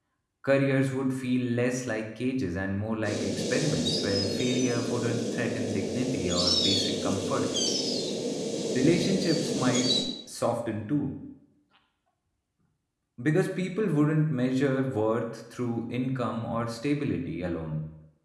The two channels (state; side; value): identical; both; correlation 1.00